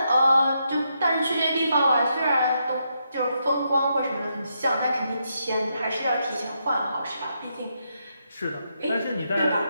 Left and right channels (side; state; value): both; inverted; correlation -0.81